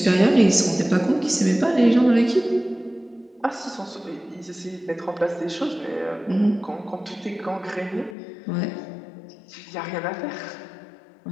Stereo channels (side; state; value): right; drops out; at 8.2 s